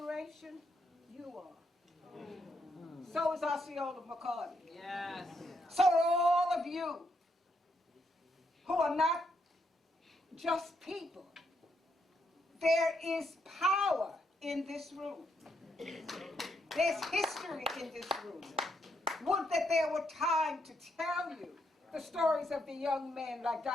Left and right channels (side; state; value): both; normal; correlation 0.77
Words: You are. So is Osceola McCarty. Yes. So are all of you who are not just people. There is power in this room. There's history in this room. Would that there were time to tell you the stories of the young men like